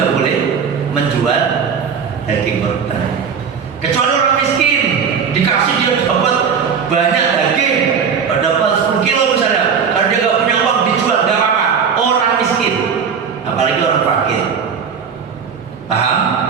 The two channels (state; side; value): quieter; left; 6.5 dB